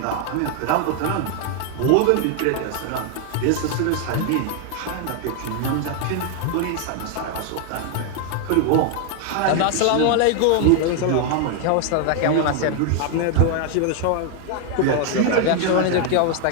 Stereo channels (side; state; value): both; different; correlation 0.00